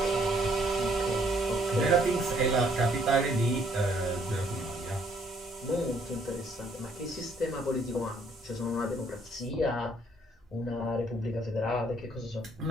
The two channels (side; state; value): both; normal; correlation 0.65